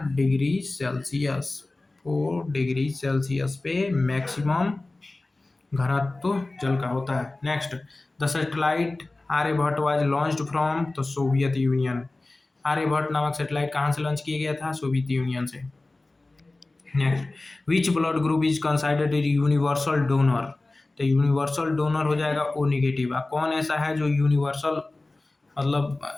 डिग्री सेल्सियस। 4 डिग्री सेल्सियस पे मैक्सिमम घनत्व जल का होता है। Next, the satellite Aryabhata was launched from? तो सोवियत यूनियन। आर्यभट्ट नामक सैटेलाइट कहाँ से लॉन्च किया गया था? सोवियत यूनियन से। Next, which blood group is considered universal donor? तो यूनिवर्सल डोनर हो जाएगा O नेगेटिव। कौन ऐसा है जो यूनिवर्सल मतलब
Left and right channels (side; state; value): right; quieter; 3.0 dB